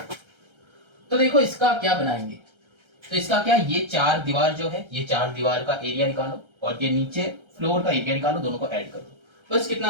तो देखो इसका क्या बनाएंगे, तो इसका क्या, ये 4 दीवार जो है, ये 4 दीवार का एरिया निकालो और ये नीचे फ्लोर का एरिया निकालो, दोनों को ऐड कर दो, बस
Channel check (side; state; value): left; late; 1.3 ms